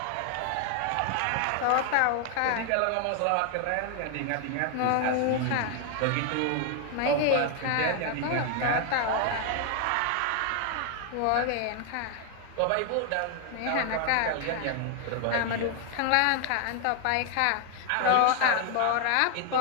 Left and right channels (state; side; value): different; both; correlation 0.00